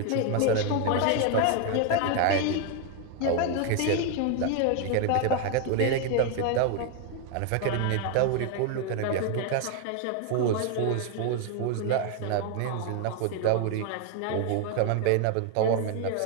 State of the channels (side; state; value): both; different; correlation 0.01